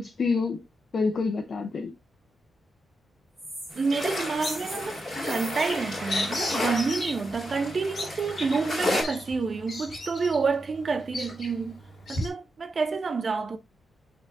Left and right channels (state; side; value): normal; both; correlation 0.86